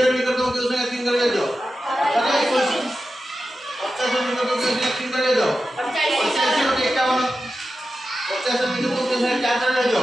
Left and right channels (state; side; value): normal; both; correlation 0.92